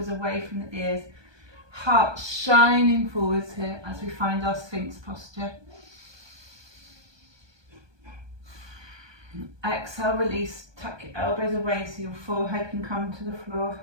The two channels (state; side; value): late; left; 1.2 ms